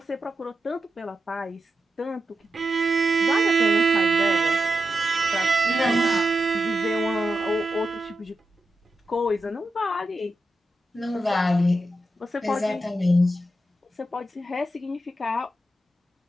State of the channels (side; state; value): both; normal; correlation 0.89